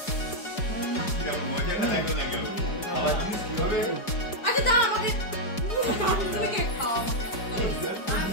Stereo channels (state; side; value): late; right; 4.9 ms